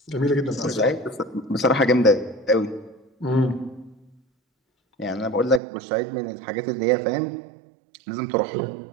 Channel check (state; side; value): drops out; left; at 5.6 s